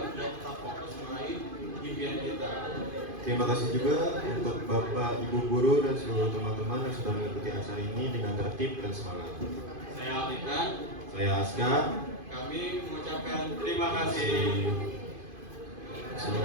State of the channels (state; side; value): late; left; 2.5 ms